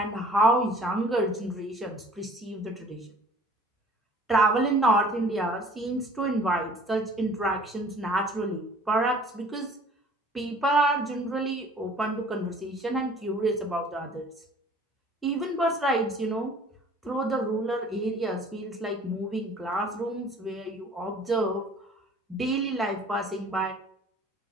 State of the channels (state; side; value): normal; both; correlation 0.51